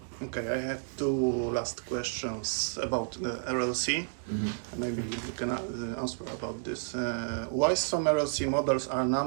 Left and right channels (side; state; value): left; silent; digital silence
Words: Okay, I have two last questions about the RLC. Maybe you can answer about this. Why some RLC models are